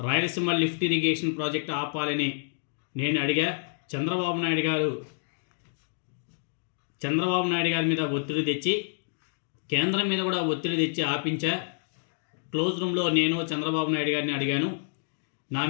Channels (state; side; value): silent; right; digital silence